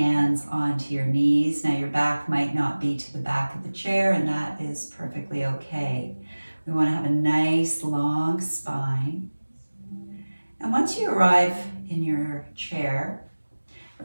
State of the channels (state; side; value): inverted; both; correlation -1.00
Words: onto your knees. Now your back might not be to the back of the chair, and that is perfectly okay. We want to have a nice long spine. And once you arrive in your chair, we're